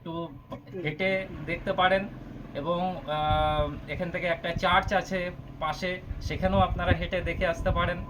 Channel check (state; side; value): identical; both; correlation 1.00